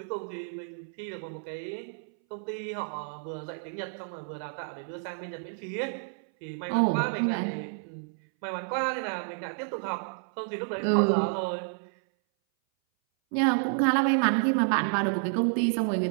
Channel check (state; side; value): silent; left; 58 dB below the other